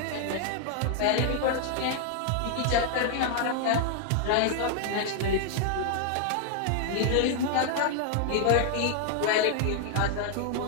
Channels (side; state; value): both; different; correlation 0.00